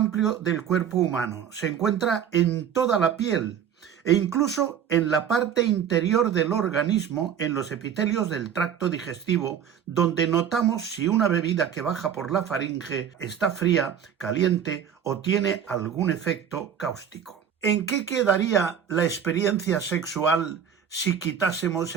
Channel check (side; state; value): left; quieter; 8.4 dB